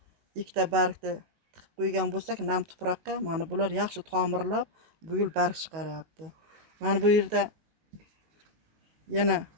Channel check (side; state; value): left; late; 19 ms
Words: Ikkita bargni tiqib qo'ygan bo'lsak, nam tuproqqa, mana bular yaxshi tomirlab, bu yil barg chiqaryapti. Mana bu yerda yana